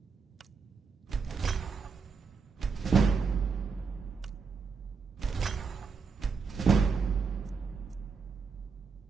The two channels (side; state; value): left; quieter; 5.3 dB